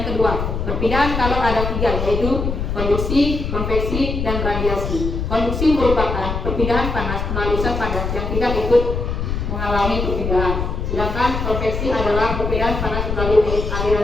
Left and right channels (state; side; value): noise; left; rumble, 2 dB below the sound